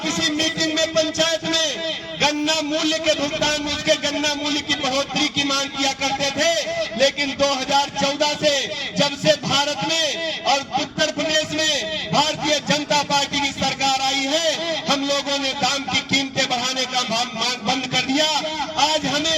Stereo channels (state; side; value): identical; both; correlation 1.00